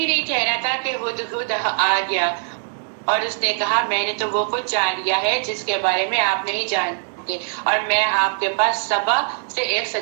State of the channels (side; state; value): left; silent; 63 dB below the other